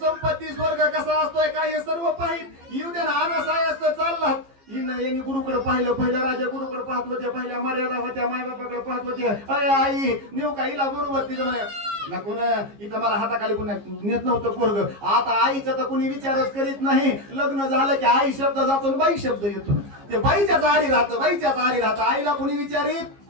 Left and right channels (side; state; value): left; late; 15 ms